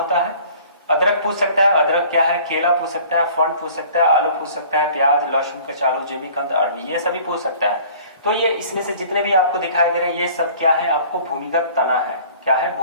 है। अदरक पूछ सकता है, अदरक क्या है, केला पूछ सकता है, फंड पूछ सकता है, आलू पूछ सकता है, प्याज, लहसुन, कचालू, जिमीकंद, अरबी, ये सभी पूछ सकता है। तो ये इसमें से जितने भी आपको दिखाई दे रहे हैं ये सब क्या है, आपको भूमिगत तना है। क्या है,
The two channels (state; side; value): inverted; both; correlation -0.50